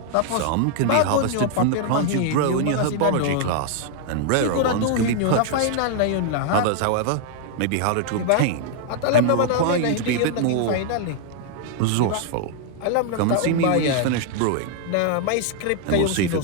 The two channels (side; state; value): both; different; correlation 0.00